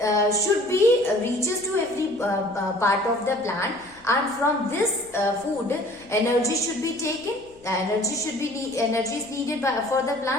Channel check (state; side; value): noise; left; hum, 26 dB below the sound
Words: should be reaches to every part of the plant, and from this food energy should be taken. Energy is needed for the